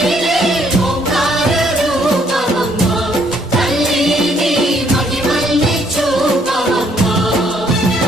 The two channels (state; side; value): normal; both; correlation 0.67